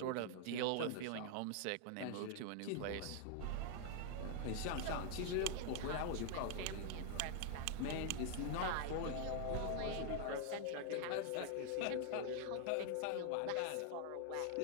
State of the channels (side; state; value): both; different; correlation 0.00